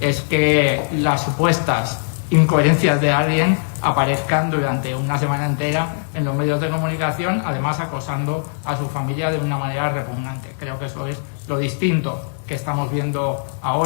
que las supuestas incoherencias de alguien aparezcan durante una semana entera en los medios de comunicación, además acosando a su familia de una manera repugnante. Creo que eso es lo distinto que estamos viendo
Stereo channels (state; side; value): silent; right; digital silence